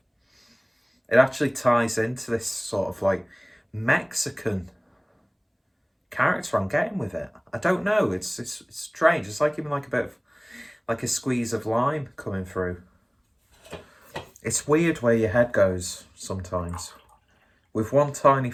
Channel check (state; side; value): identical; both; correlation 1.00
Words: It actually ties into this sort of like Mexican character I'm getting with it. I don't know. It's strange. It's like even like a bit of like a squeeze of lime coming through. It's weird where your head goes sometimes. With one tiny